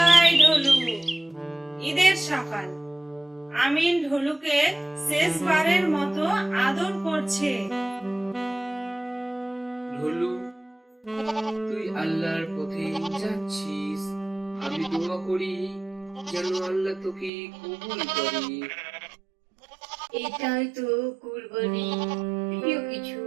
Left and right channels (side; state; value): left; drops out; at 17.3 s